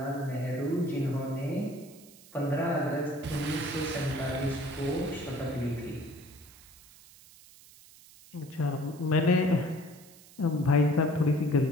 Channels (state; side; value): noise; right; hiss, 22 dB below the sound